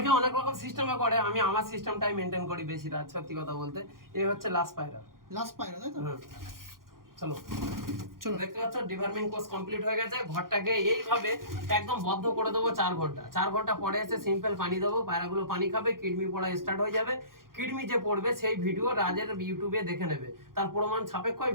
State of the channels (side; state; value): left; late; 0.91 ms